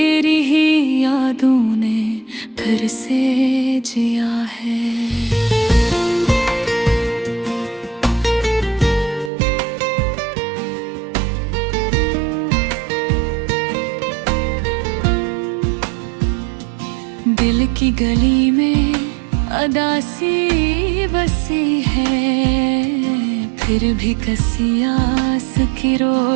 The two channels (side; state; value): left; drops out; at 9.3 s